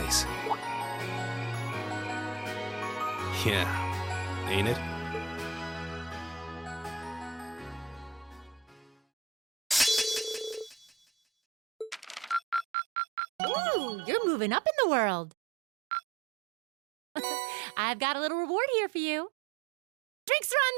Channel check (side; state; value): left; drops out; at 12.7 s